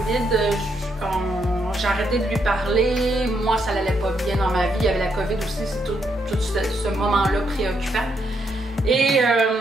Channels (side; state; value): both; normal; correlation 0.77